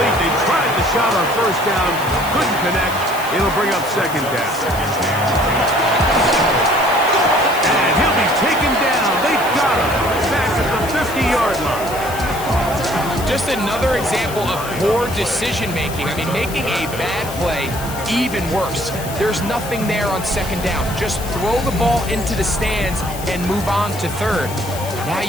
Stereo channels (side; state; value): left; noise; hiss, 12 dB below the sound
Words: They tried the shot on 1st down. Couldn't connect. It'll bring up 2nd down. And he'll be taken down. They got him. Back at the 50-yard line. Just another example of poor decision-making. I mean, making a bad play even worse. There's nothing there on 2nd down. Just throw the ball into the stands and move on to 3rd. Now